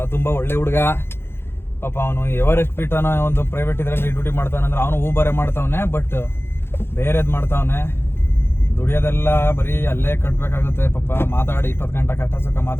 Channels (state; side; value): late; right; 0.11 ms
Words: ತುಂಬಾ ಒಳ್ಳೆ ಹುಡುಗ. ಪಾಪ ಅವನು ಎವರೆಸ್ಟ್ ಪೀಠನ ಒಂದು ಪ್ರೈವೇಟ್ ಇದರಲ್ಲಿ ಡ್ಯೂಟಿ ಮಾಡ್ತಾನೆ. ಅಂದ್ರೆ ಅವನು ಊಬರೆ ಮಾಡ್ತಾವನೆ, ಬಟ್ ಬೇರೆದ್ ಮಾಡ್ತಾವನೆ. ದುಡಿಯೋದೆಲ್ಲ ಬರೀ ಅಲ್ಲೇ ಕಟ್ಬೇಕಾಗುತ್ತೆ. ಪಾಪ ಮಾತಾಡಿ 20 ಗಂಟೆ ಕಷ್ಟ ಸುಖ